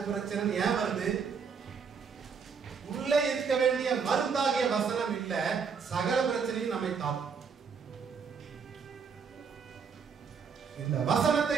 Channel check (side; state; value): left; quieter; 6.0 dB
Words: பிரச்சனை ஏன் வருது? உள்ளே இருக்க வேண்டிய மருந்தாகிய வசனம் இல்ல, சகல பிரச்சனையும் நம்மை தாக்கும். இந்த வசனத்தை